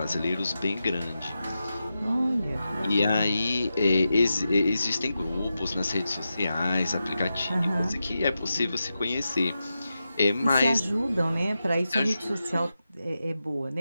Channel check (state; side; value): inverted; both; correlation -0.90